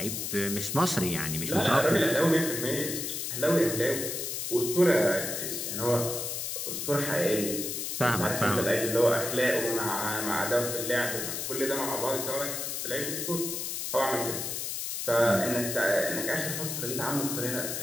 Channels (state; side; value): noise; left; hiss, 3 dB below the sound